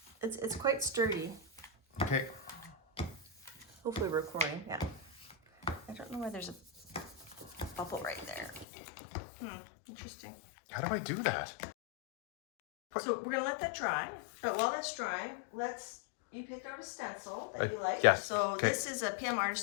It's quite sturdy. Okay. Hopefully we're recording, yeah. I don't know why there's a bubble right there. Interesting. How do I do that? So we're gonna let that dry, but while that's drying, you picked out a stencil that you like. Yes. So this is a PM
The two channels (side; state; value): right; drops out; at 8.7 s